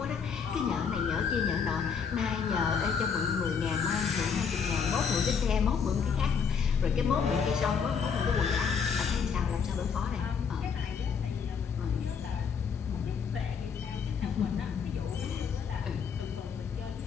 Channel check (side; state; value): right; quieter; 6.4 dB